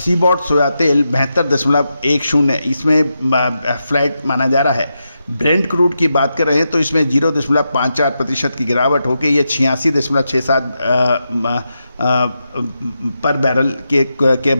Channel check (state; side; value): inverted; both; correlation -0.87